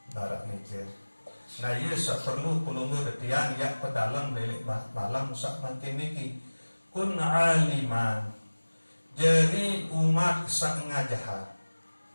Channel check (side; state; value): both; inverted; correlation -1.00